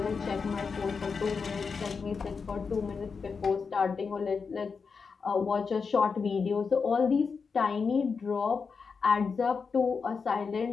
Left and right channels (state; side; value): quieter; right; 5.3 dB